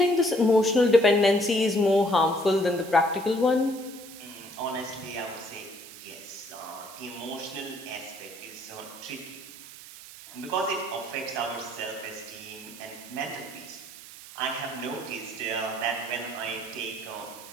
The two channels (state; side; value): noise; right; hiss, 16 dB below the sound